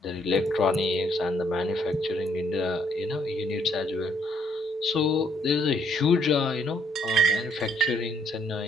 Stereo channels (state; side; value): normal; both; correlation 0.68